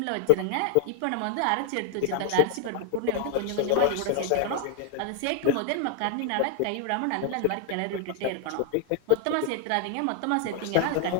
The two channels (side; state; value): both; different; correlation 0.00